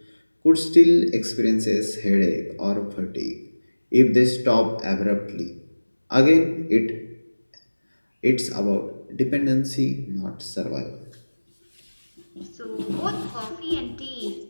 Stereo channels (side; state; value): both; inverted; correlation -1.00